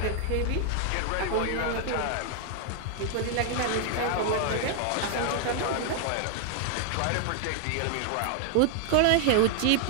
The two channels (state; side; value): different; both; correlation 0.00